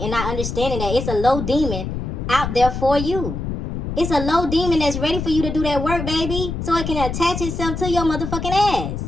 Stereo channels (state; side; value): noise; left; rumble, 4 dB below the sound